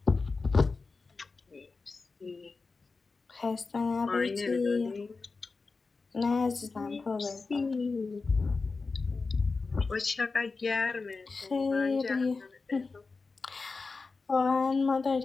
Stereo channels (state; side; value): quieter; right; 4.1 dB